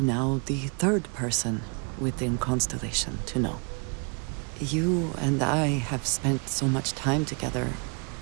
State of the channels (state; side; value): quieter; left; 36.6 dB